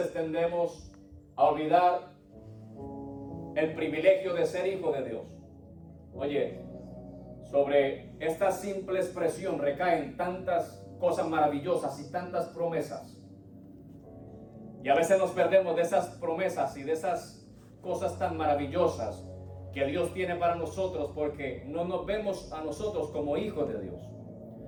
tendemos a olvidar el privilegio de ser hijo de Dios. Oye, sobre esta simple expresión recaen tantas cosas maravillosas y tantas promesas. Y a veces nos perdemos de esas promesas y de esas cosas tan maravillosas que Dios tiene para nosotros, porque no nos vemos a nosotros como hijos de Dios.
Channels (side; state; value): both; identical; correlation 1.00